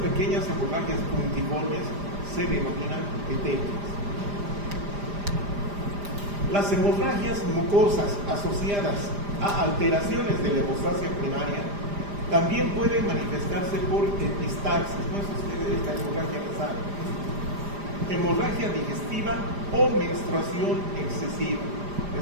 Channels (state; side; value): late; left; 5.0 ms